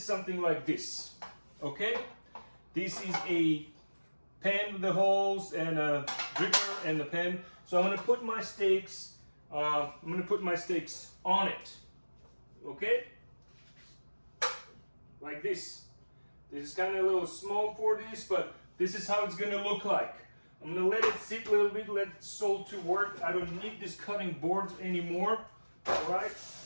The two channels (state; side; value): inverted; both; correlation -1.00